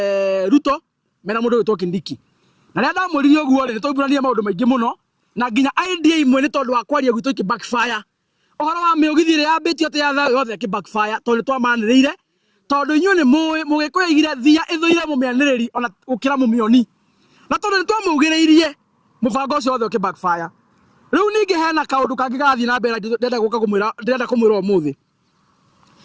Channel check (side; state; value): both; identical; correlation 1.00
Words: Ruto mena mundu ugwetwo Kindiki na ria ndamuririe uguo ri tũburania maundu maingi muno na nginya idea imwe ni tondu wa kwaria gwitũ ki backfire ohoro wa miugithire ya betio te ya yothe ki backfire tondu twamaniriire tondu inyu ni mugikuya igire thia ithuire mumianiriri ona ukira mumioni na tondu ni twamugiriirie mubango ucio wothe ki backfire riu ningi hena kaundu kangi gathi na mbere ndenda kumwira umuthi